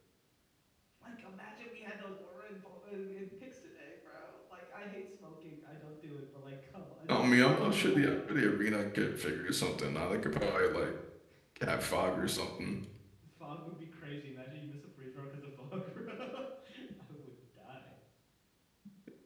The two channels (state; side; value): identical; both; correlation 1.00